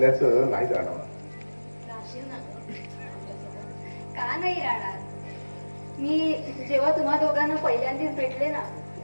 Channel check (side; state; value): both; inverted; correlation -1.00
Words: नाही जाणवणार. राहशील ना गं आमच्यासोबत? का नाही राहणार? मी जेव्हा तुम्हा दोघांना पहिल्यांदाच भेटले ना